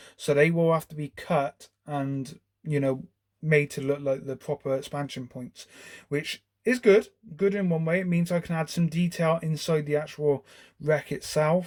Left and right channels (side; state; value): both; identical; correlation 1.00